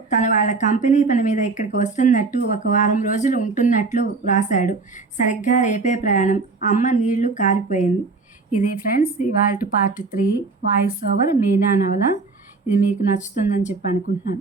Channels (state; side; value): quieter; left; 4.1 dB